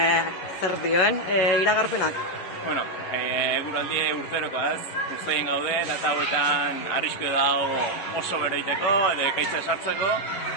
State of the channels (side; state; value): right; late; 11 ms